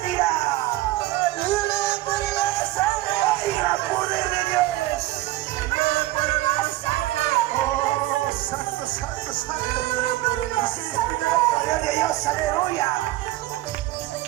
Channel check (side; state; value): left; quieter; 17.3 dB